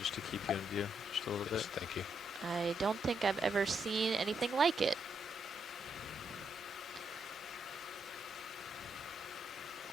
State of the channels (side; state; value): both; normal; correlation 0.79